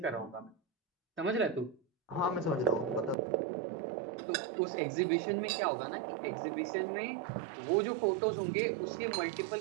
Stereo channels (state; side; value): drops out; left; at 3.2 s